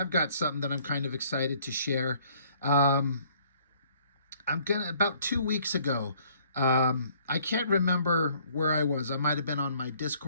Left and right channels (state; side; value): inverted; both; correlation -0.61